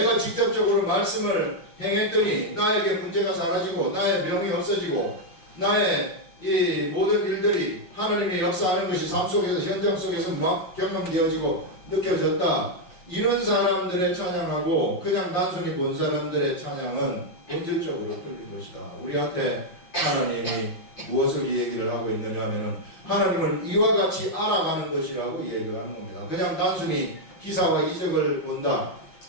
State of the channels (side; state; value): right; late; 5.7 ms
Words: 직접적으로 말씀을 행했더니 나에게 문제가 사라지고 나의 병이 없어지고 나의 이 모든 일들이 하나님의 역사하는 것이 삶 속에서 현장 속에서 막 경험되어지고 느껴졌다. 이런 사람들의 찬양하고 그냥 단순히 본 사람들의 찬양은 본질적으로 틀린 것이다. 우리한테 하나님이 무엇을 이 얘기를 하고 있느냐 하면은 하나님을 이와 같이 알아가는 것이라고 이 얘기를 하는 겁니다. 그냥 단순히 기사와 이적을 본다.